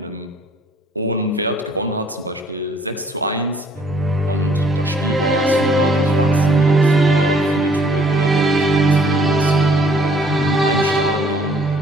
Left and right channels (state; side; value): normal; both; correlation 0.60